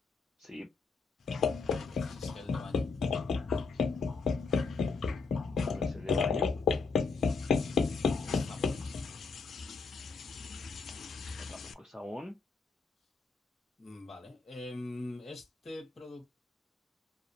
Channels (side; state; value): right; quieter; 4.7 dB